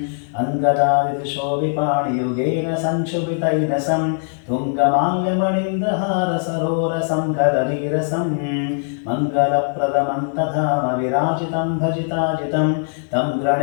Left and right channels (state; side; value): silent; right; digital silence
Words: अङ्गदादिशोभिपाणियुगेन संक्षुभितैनसं तुङ्गमाल्यमणीन्द्रहारसरोरसं कदलीरसं मङ्गलप्रदमन्तधाम विराजितं भजिताजितं तं